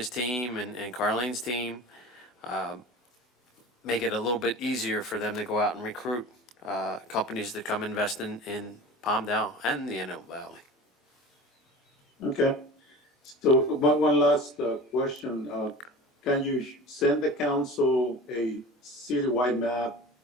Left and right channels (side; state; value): both; normal; correlation 0.36